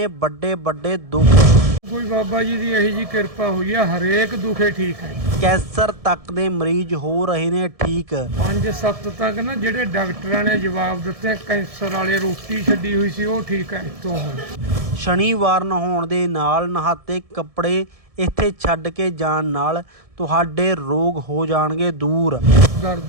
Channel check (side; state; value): left; late; 1.7 ms